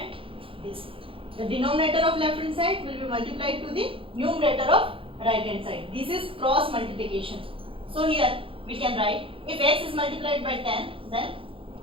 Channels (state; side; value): late; left; 0.26 ms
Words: this. The denominator of left hand side will be multiplied to the numerator of right hand side. This is cross multiplication. So here we can write if x is multiplied by 10, then